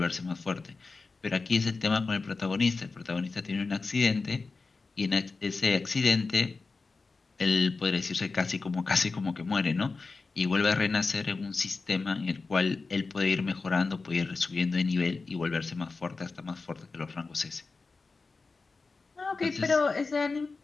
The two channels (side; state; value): right; quieter; 4.1 dB